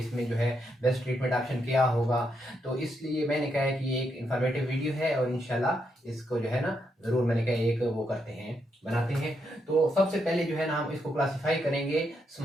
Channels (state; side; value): normal; both; correlation 0.80